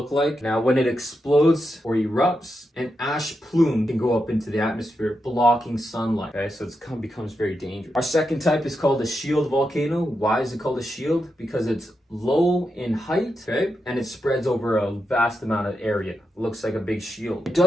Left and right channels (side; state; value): both; normal; correlation 0.86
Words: like. Now, when it explodes or erupts, an ash plume can go up into the atmosphere, blocking sunlight. Okay, so it becomes very dangerous. Our second type is called a shield volcano. Why is it called a shield? Because it's low in height, okay, and it spreads over a vast amount of area. It looks like a big shield. It